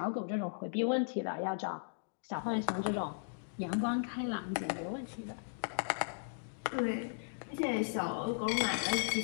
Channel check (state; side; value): silent; right; digital silence